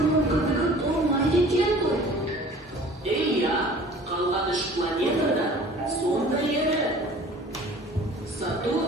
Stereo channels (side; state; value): both; normal; correlation 0.47